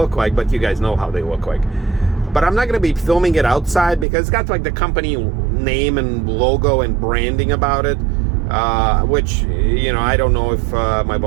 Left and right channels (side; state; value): left; drops out; at 4.0 s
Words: like, but you guys know how they look like. But I'm not going to be filming it outside because it's got like the company name and logo and branding about it, which, you know, I don't know if my